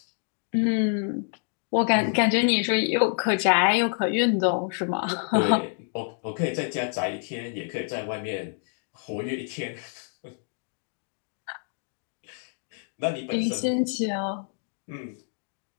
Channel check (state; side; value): silent; right; 60 dB below the other